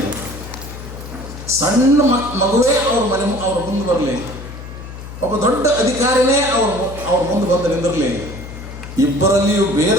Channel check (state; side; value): noise; left; hum, 12 dB below the sound